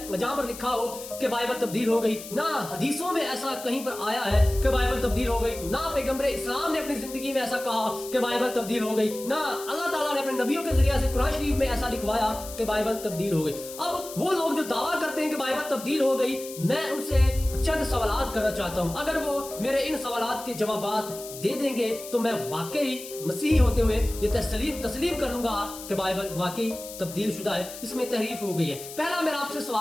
जहां पर लिखा हो कि बाइबल तब्दील हो गई, ना हदीसों में ऐसा कहीं पर आया है कि बाइबल तब्दील हो गई, ना पैगंबर इस्लाम ने अपनी जिंदगी में ऐसा कहा कि बाइबल तब्दील हो गई, ना अल्लाह ताला ने अपने नबियों के जरिए से कुरान शरीफ में ऐसा लिखवाया कि बाइबल तब्दील हो गई। अब वो लोग जो दावा करते हैं कि बाइबल तब्दील हो गई, मैं उनसे चंद सवालात करना चाहता हूं। अगर वो मेरे इन सवालात के जवाबात दे देंगे तो मैं वाकई मसीही होते हुए ये तस्लीम कर लूंगा कि बाइबल वाकई तब्दील शुदा है, इसमें तहरीफ हो गई है। पहला मेरा आपसे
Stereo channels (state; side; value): noise; left; hiss, 13 dB below the sound